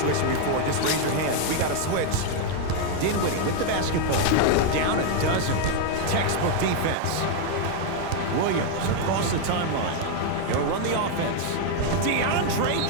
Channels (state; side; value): different; both; correlation 0.01